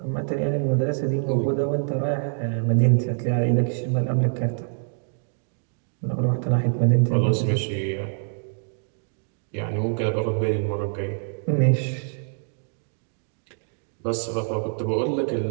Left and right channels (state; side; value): silent; left; digital silence